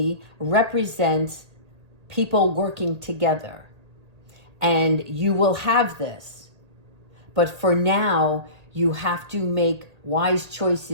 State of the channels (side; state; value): left; late; 1.8 ms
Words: represents people working together. And you will have this. But for now, you have to make wise